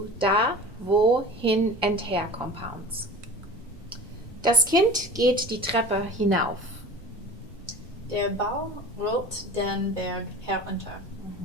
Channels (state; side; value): normal; both; correlation 0.38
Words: da, wo, hin and her compounds. Das Kind geht die Treppe hinauf. Der Baum rollt den Berg herunter.